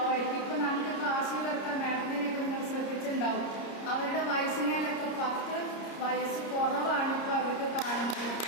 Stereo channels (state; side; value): late; right; 30 ms